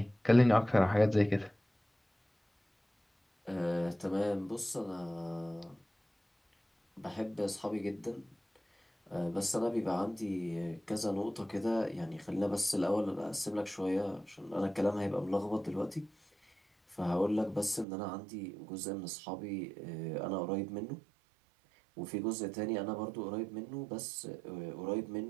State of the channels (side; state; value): left; drops out; at 17.9 s